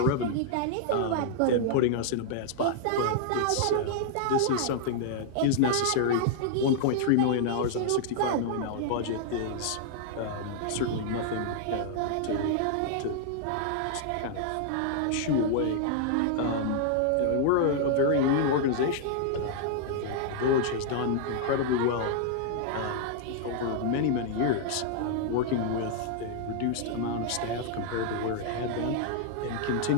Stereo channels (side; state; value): both; different; correlation -0.01